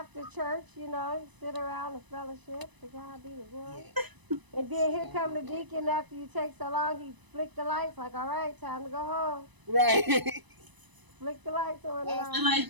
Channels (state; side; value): late; left; 1.0 ms